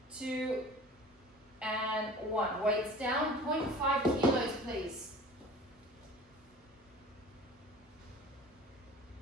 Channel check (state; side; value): normal; both; correlation 0.43